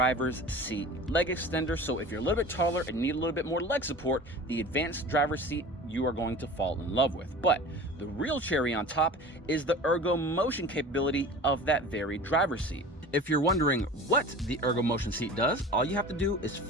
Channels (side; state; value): both; normal; correlation 0.38